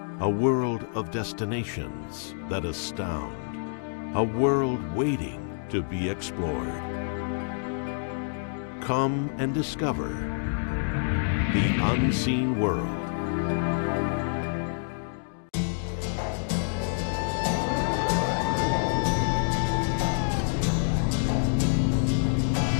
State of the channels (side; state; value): right; silent; digital silence